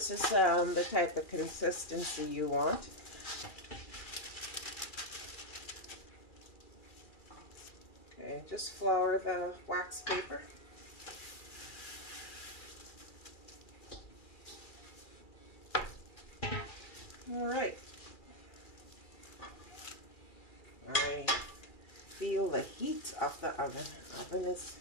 is the type of consistency you want. Okay, just flour the wax paper. Alright, I feel the heat of the oven. Oven is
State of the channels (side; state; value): right; late; 2.3 ms